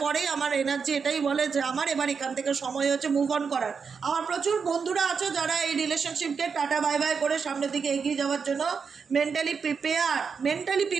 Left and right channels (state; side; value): quieter; left; 5.8 dB